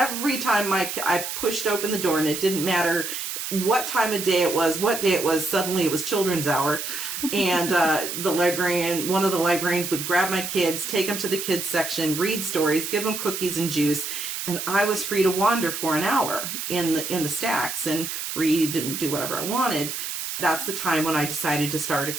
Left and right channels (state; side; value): noise; right; hiss, 5 dB below the sound